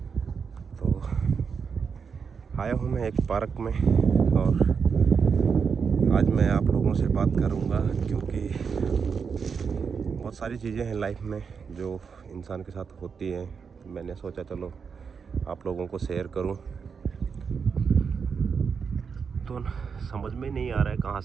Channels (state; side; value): quieter; left; 6.0 dB